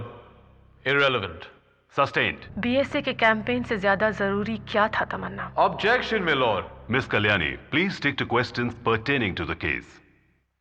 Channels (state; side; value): identical; both; correlation 1.00